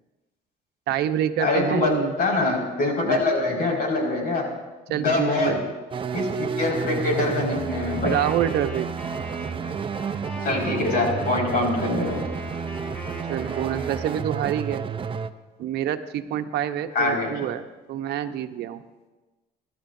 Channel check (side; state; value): both; normal; correlation 0.21